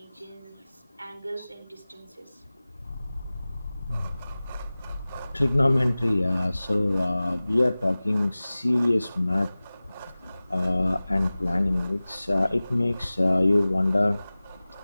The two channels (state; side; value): inverted; both; correlation -0.98